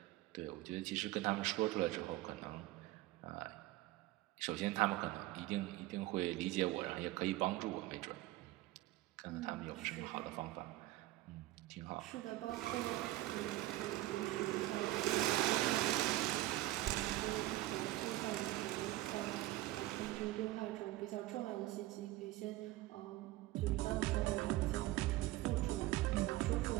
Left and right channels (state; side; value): quieter; left; 17.2 dB